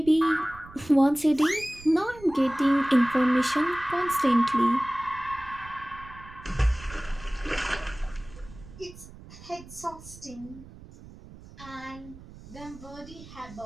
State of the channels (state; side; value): noise; right; rumble, 18 dB below the sound